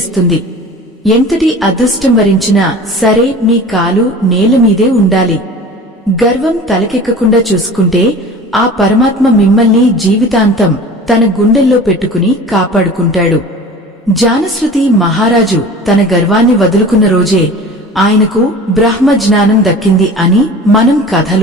ఎంతటి అదృష్టం వరించినా సరే మీ కాలు నేలమీదే ఉండాలి. గర్వం తలకెక్కకుండా చూసుకుంటే ఆ పరమాత్మ మిమ్మల్ని జీవితాంతం తన గుండెల్లో పెట్టుకుని కాపాడుకుంటాడు. జానశ్రుతి మహారాజు తన గర్వాన్ని వదులుకున్న రోజే ఆయనకు బ్రహ్మజ్ఞానం దక్కింది అని మనం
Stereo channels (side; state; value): both; normal; correlation 0.40